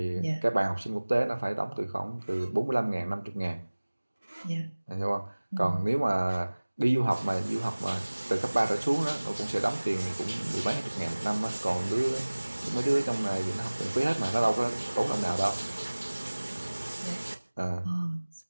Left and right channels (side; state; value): both; inverted; correlation -1.00